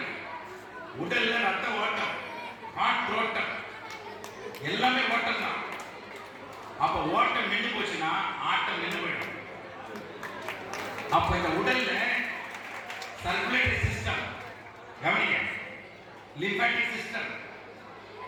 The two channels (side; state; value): both; identical; correlation 1.00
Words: உடல்ல ரத்த ஓட்டம், காற்றோட்டம், எல்லாமே ஓட்டம் தான். அப்ப ஓட்டம் நின்று போச்சுன்னா ஆட்டம் நின்று போயிடும். அப்ப இந்த உடல்ல சர்க்குலேட்டரி சிஸ்டம், கவனிங்க, லிம்பாட்டிக் சிஸ்டம்,